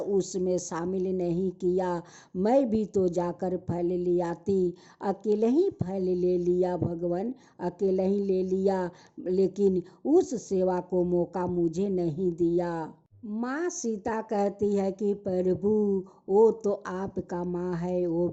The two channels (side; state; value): both; identical; correlation 1.00